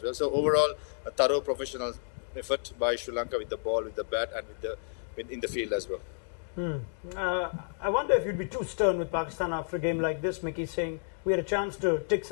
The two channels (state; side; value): silent; right; digital silence